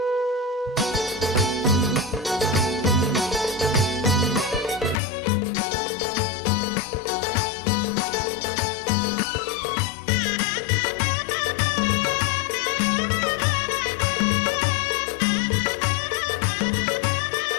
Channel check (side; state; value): right; drops out; at 5.0 s